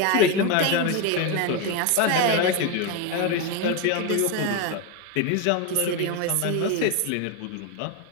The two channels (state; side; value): different; both; correlation 0.03